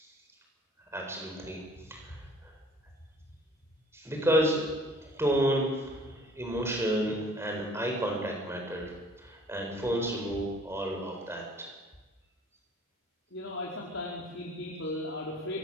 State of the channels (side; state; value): both; normal; correlation 0.53